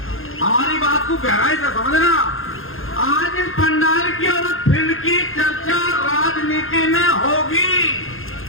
हमारी बात को गहराई से समझना आज इस पंडाल की और इस फील्ड की चर्चा राजनीति में होगी।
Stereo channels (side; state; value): right; late; 0.60 ms